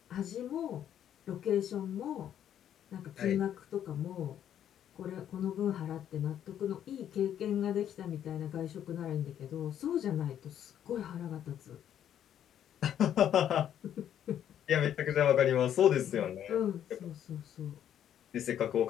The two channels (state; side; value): quieter; right; 10.1 dB